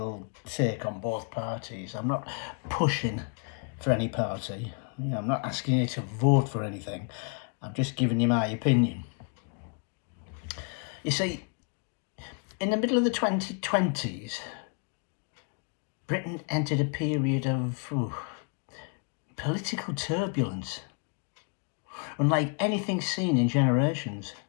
take on both parties. I'm not pushing for any party. I'm not asking you to vote for anything. I'm just giving you my opinion. You see, in the middle of the 2020s, Britain entered a period of political turbulence, unlike anything seen in generations.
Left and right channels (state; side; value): quieter; right; 36.1 dB